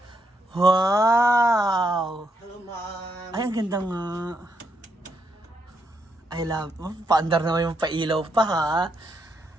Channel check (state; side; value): normal; both; correlation 0.78